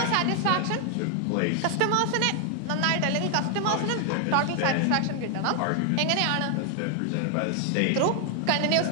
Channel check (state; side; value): different; both; correlation 0.00